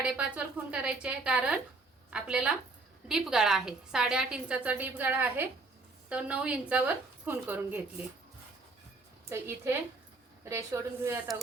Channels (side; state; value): left; quieter; 3.5 dB